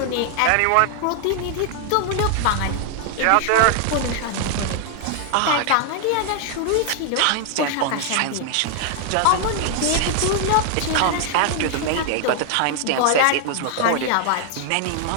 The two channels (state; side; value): different; both; correlation 0.00